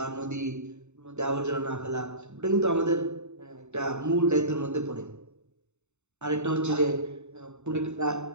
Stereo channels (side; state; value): left; late; 0.82 ms